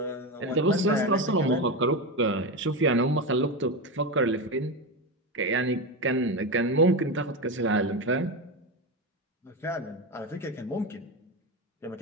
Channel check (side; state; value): both; normal; correlation 0.16